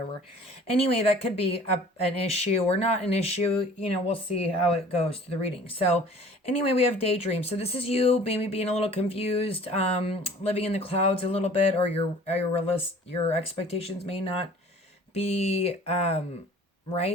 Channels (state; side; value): normal; both; correlation 0.49